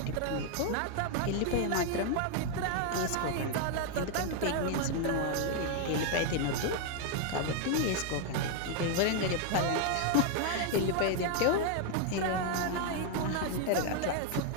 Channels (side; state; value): both; different; correlation 0.00